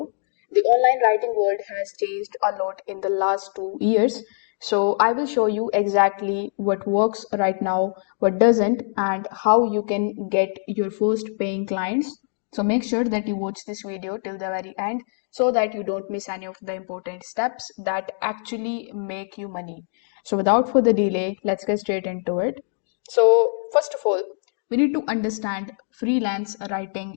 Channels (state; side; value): silent; right; digital silence